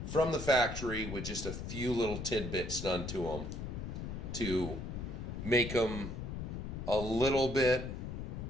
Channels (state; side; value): noise; left; rumble, 6 dB below the sound